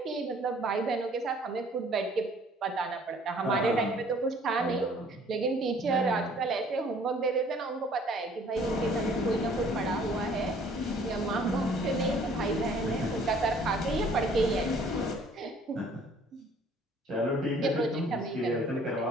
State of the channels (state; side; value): normal; both; correlation 0.56